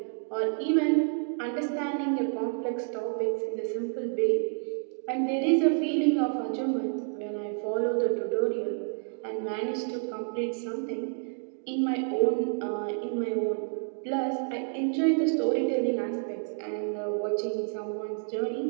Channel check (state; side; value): silent; left; 58 dB below the other